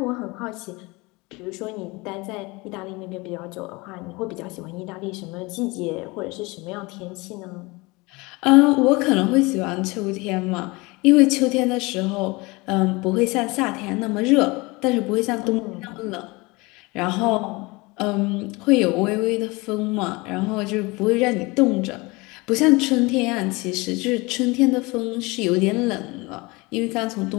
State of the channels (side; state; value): right; quieter; 24.5 dB